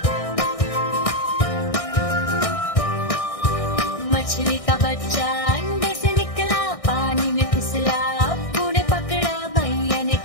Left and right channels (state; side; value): late; right; 1.6 ms